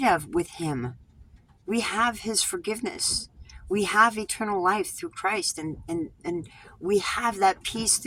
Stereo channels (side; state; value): both; identical; correlation 1.00